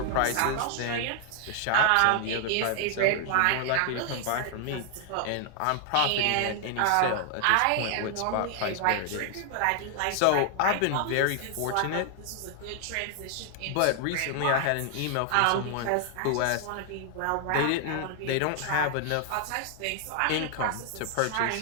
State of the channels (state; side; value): different; both; correlation 0.00